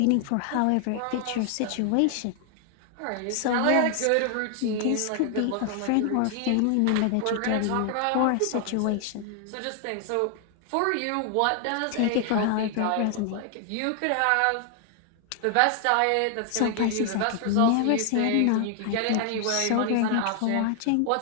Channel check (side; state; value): both; different; correlation 0.00